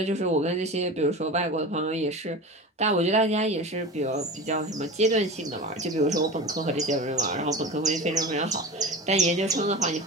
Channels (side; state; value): both; normal; correlation 0.31